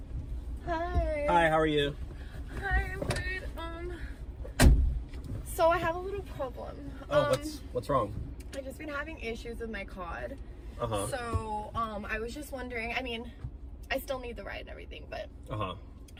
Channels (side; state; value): both; identical; correlation 1.00